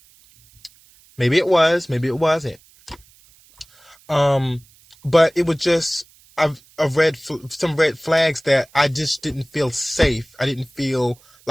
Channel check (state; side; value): noise; right; hiss, 29 dB below the sound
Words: Maybe it was, maybe it wasn't. But it was just some red flags that I just didn't feel safe. I didn't feel